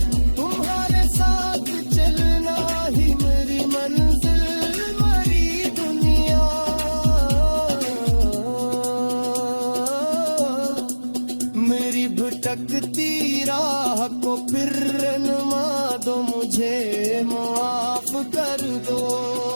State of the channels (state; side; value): inverted; both; correlation -1.00